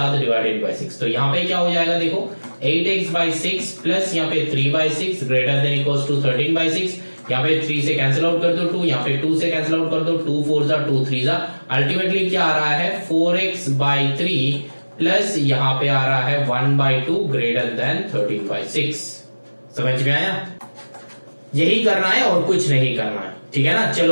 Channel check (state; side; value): inverted; both; correlation -1.00